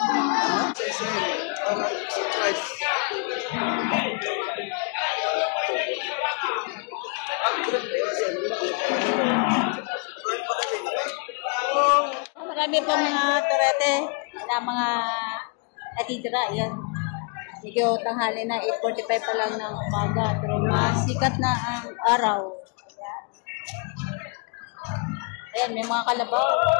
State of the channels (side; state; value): right; quieter; 34.0 dB